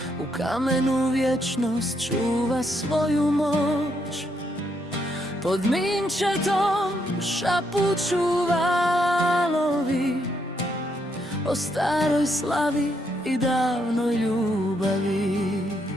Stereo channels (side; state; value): both; normal; correlation 0.76